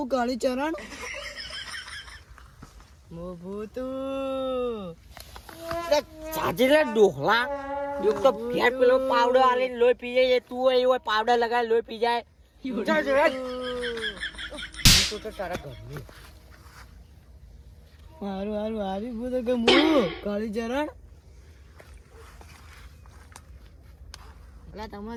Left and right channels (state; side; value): identical; both; correlation 1.00